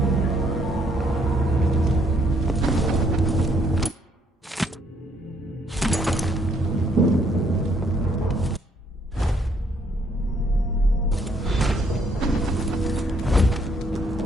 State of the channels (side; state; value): both; normal; correlation 0.68